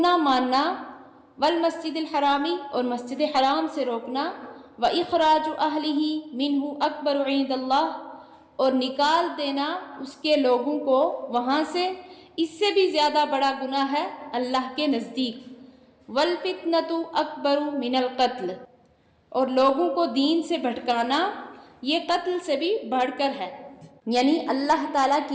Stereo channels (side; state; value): both; identical; correlation 1.00